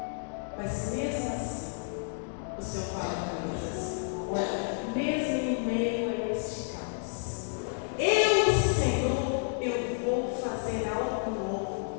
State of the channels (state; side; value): silent; right; digital silence